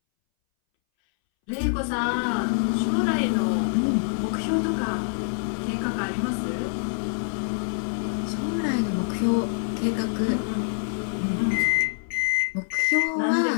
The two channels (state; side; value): silent; right; 61 dB below the other